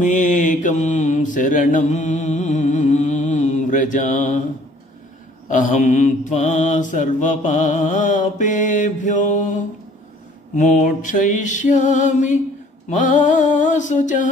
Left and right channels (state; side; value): normal; both; correlation 0.56